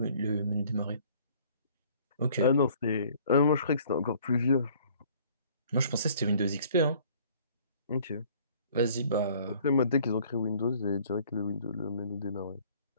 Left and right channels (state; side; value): inverted; both; correlation -0.56